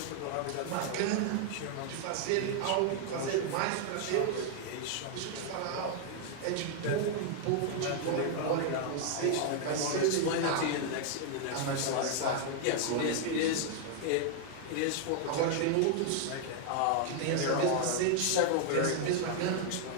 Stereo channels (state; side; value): different; both; correlation 0.00